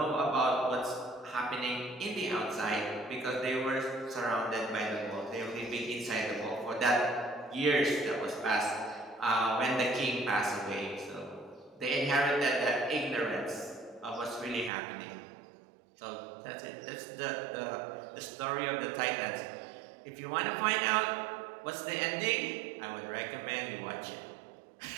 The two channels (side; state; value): left; drops out; at 14.7 s